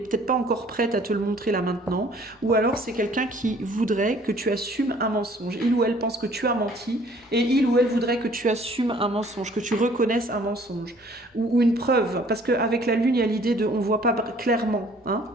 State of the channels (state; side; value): normal; both; correlation 0.56